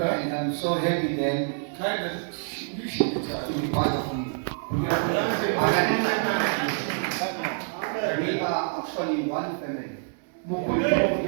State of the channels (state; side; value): silent; left; 60 dB below the other